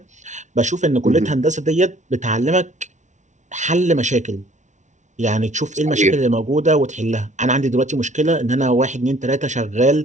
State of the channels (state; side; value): late; left; 0.35 ms